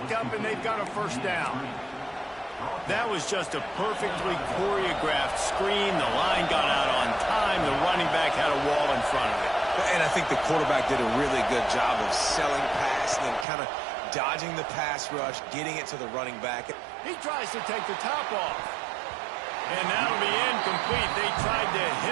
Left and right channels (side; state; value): left; drops out; at 13.5 s